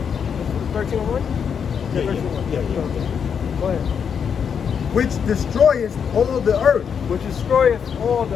13:1. Yeah. Go ahead. Which destroyeth all the earth. Which destroyeth all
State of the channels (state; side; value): quieter; right; 7.1 dB